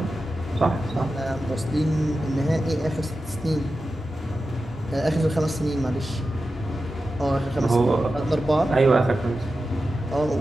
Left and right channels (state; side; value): normal; both; correlation 0.92